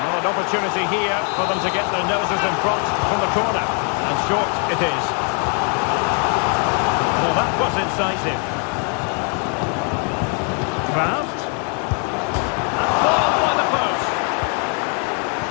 an opportunity here for them to get their noses in front from the corner. And short it is. Well, that was incisive. Kraft. And ball by the post.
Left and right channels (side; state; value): right; quieter; 39.8 dB